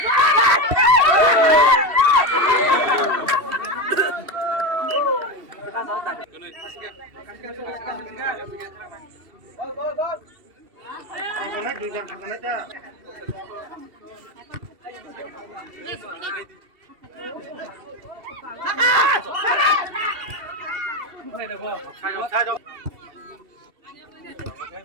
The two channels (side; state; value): left; late; 2.7 ms